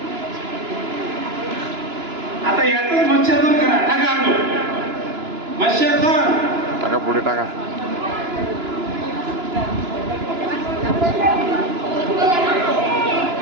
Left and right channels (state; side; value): late; left; 2.9 ms